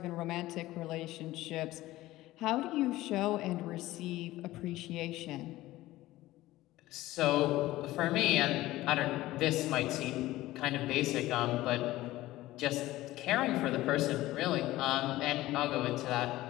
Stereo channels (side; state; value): right; quieter; 16.8 dB